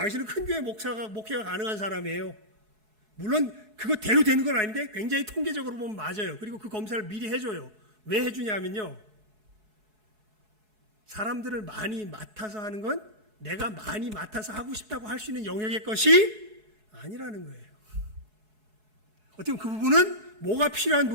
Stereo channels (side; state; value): left; late; 4.7 ms